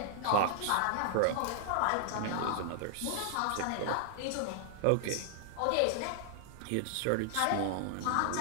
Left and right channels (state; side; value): different; both; correlation -0.01